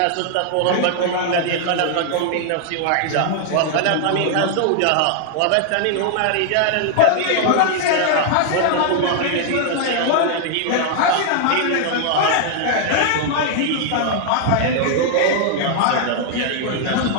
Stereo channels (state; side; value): different; both; correlation 0.00